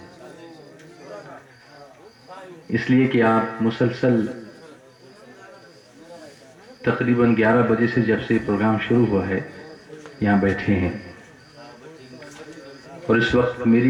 اس لیے کہ آپ مسلسل تقریباً 11 بجے سے جب سے پروگرام شروع ہوا ہے یہاں بیٹھے ہیں، اور اس وقت میری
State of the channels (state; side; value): identical; both; correlation 1.00